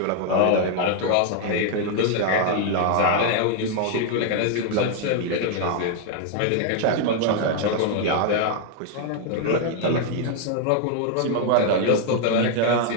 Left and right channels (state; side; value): different; both; correlation 0.00